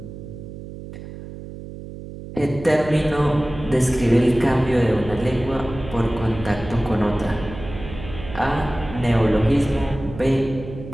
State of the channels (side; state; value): right; noise; hum, 12 dB below the sound